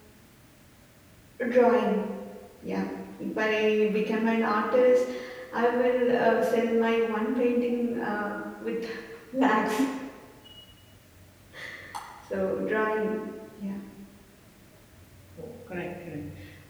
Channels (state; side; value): identical; both; correlation 1.00